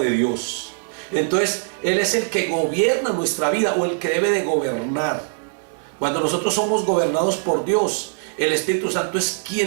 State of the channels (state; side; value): silent; left; digital silence